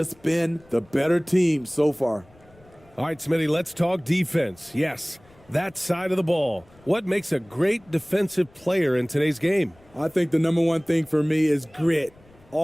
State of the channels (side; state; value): left; noise; rumble, 28 dB below the sound